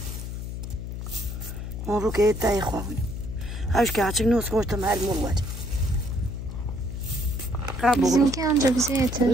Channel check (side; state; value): left; noise; hum, 6 dB below the sound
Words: Mabuk etay khawin. Haş ki açık nos koştum her mumlar. Bizimki anca bize yeter.